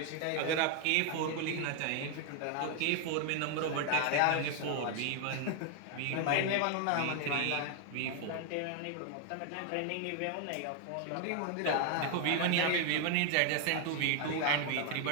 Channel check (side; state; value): both; different; correlation 0.00